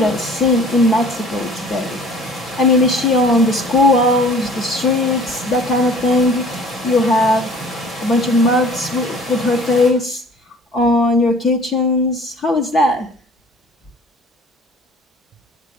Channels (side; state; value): both; normal; correlation 0.49